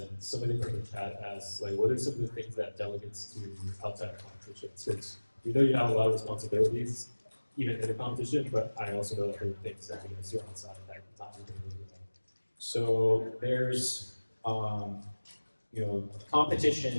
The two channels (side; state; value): both; inverted; correlation -1.00